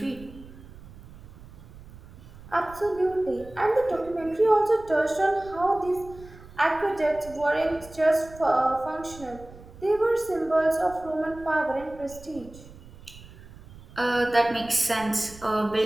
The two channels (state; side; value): noise; right; rumble, 19 dB below the sound